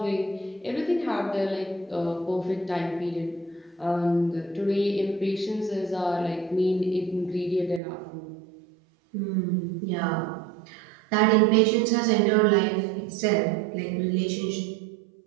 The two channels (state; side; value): drops out; left; at 7.8 s